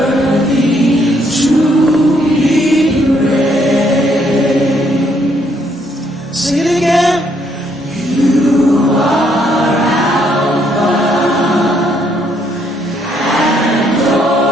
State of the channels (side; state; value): both; normal; correlation 0.70